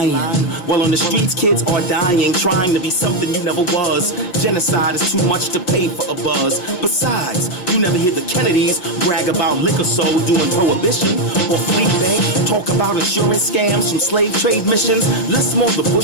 While on the streets, kids are dying, trying to be something you never was. Genocide is too much to pay for a buzz. Besides, you never hear the Kennedys brag about liquor sold during Prohibition, or Fleet Bank talk about insurance scams from slave trade missions. Less more the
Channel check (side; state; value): right; late; 5.5 ms